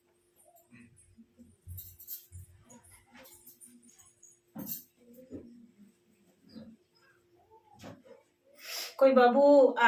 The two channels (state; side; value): identical; both; correlation 1.00